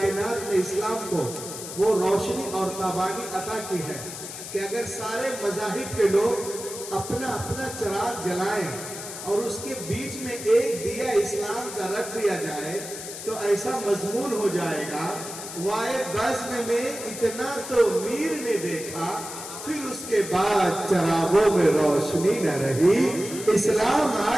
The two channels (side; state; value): left; noise; hiss, 10 dB below the sound